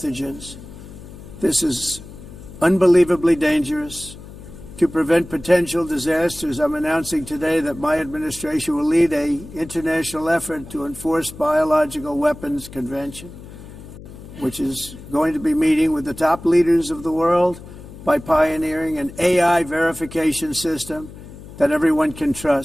This is unbelievably dangerous. To prevent potential disasters, I'm announcing today that my administration will lead an international effort to enforce Biological Weapons Convention, which is going to be meeting with the top leaders of the world by pioneering an AI verification system that everyone can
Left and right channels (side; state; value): left; noise; hum, 16 dB below the sound